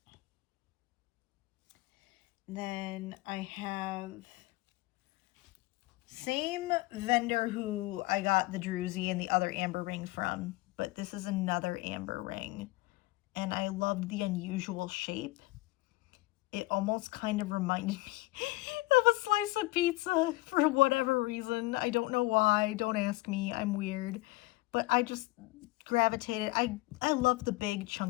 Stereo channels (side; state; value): right; quieter; 20.4 dB